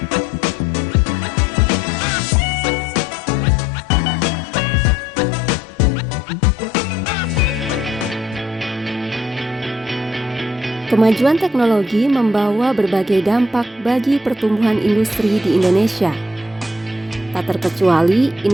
Kemajuan teknologi membawa berbagai dampak bagi pertumbuhan industri di Indonesia, tak terkecuali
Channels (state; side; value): normal; both; correlation 0.67